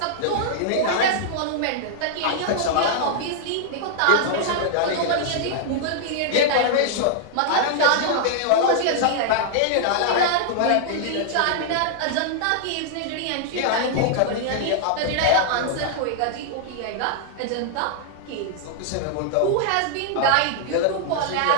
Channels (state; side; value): different; both; correlation -0.01